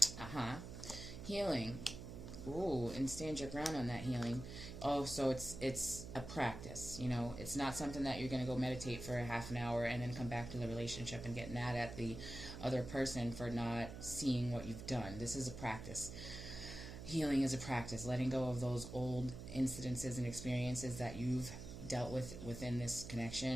healing. Ooh, and stand your ground on that healing. Oh, so it's a practice, you know. It's not something that you're going to go meditate for a half an hour and then come back to the relationship and get mad at the other person for not seeing what you've done. This is a practice. Healing is a practice. Letting go of those old incidences and experiences that you've dealt with within this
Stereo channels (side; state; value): right; noise; hum, 10 dB below the sound